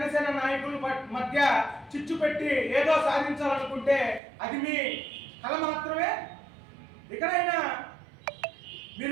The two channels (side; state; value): left; drops out; at 4.2 s